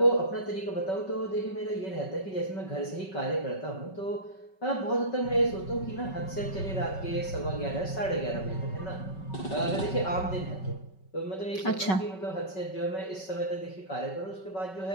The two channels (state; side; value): late; right; 5.3 ms